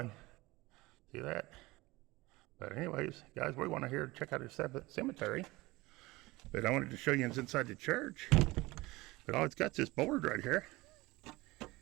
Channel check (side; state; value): left; quieter; 21.0 dB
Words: See that? But anyways, guys, we want to here check out the cemetery. But I wanted to show you inside the church. But all it's got is this board right here.